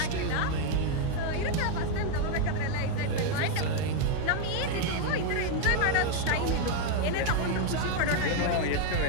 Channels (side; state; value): both; different; correlation 0.01